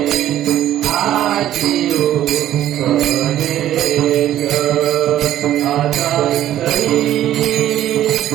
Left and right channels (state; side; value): quieter; left; 12.4 dB